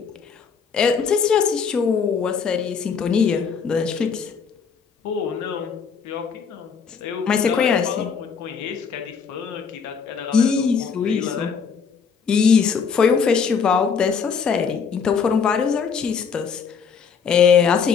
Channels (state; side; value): quieter; right; 6.2 dB